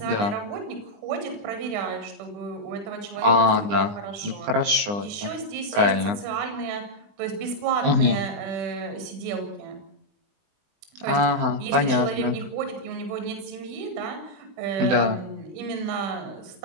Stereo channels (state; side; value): late; left; 20 ms